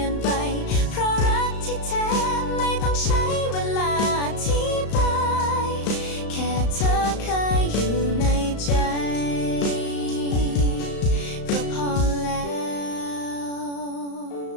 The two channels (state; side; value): late; right; 35 ms